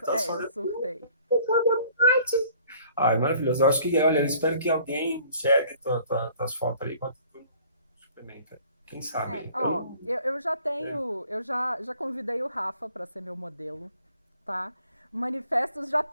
os eu fotos. surtei. Ai, maravilhoso. Eu acho que, olha, eu espero que alguém enxergue tuas fotos ali enquanto tu suplementa. Quem sabe? Eu Ó, não. eu já É. tenho, já convidei o Rafa para ser meu modelo, tá? O Manifestos já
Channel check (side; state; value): both; inverted; correlation -0.55